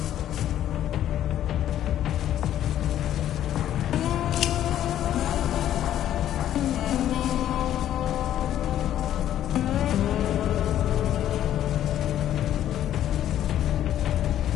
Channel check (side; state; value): right; quieter; 11.6 dB